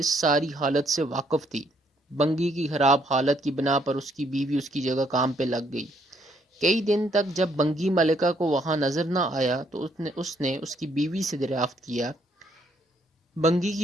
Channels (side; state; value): both; normal; correlation 0.69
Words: ساری حالت سے واقف تھی۔ بنگی کی خراب حالت کی بنا پر اس کی بیوی اس کی جگہ کام پہ لگ گئی۔ کئی دن تک جب بنگی ملکہ کو وہاں نظر نہ آیا تو اس نے اس کی بیوی سے دریافت کیا۔ بنگی